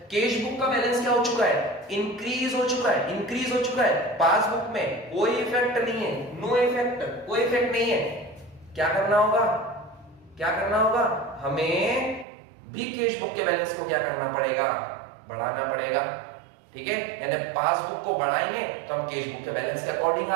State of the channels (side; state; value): left; drops out; at 12.2 s